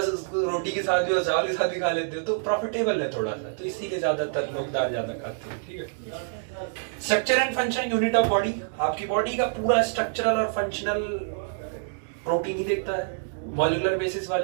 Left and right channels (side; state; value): left; silent; digital silence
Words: रोटी के साथ भी और चावल के साथ भी खा लेते हो, तो प्रॉफिटेबल है थोड़ा सा, तो इसीलिए ज्यादातर लोग दाल ज्यादा खाते हैं। ठीक है। Structure and function unit of body, आपकी बॉडी का पूरा स्ट्रक्चरल और फंक्शनल प्रोटीन ही देखता है। मॉलिक्यूलर बेसिस